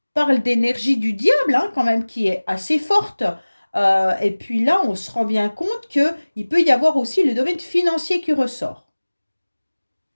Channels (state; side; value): inverted; both; correlation -1.00